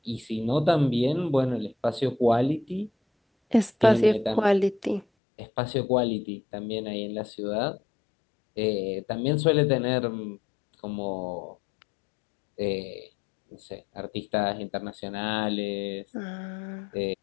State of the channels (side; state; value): right; drops out; at 5.1 s